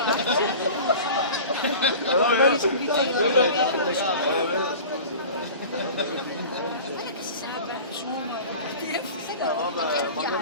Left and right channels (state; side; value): inverted; both; correlation -0.37